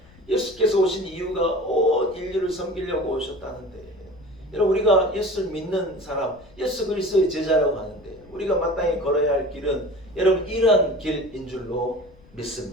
예수께서 오신 이유가 온 인류를 섬기려고 오셨다는데 여러분 우리가 예수를 믿는 사람 예수 그리스도의 제자라고 하는데 우리가 마땅히 걸어야 할 길은 여러분 이러한 길인 줄로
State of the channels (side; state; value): left; noise; rumble, 26 dB below the sound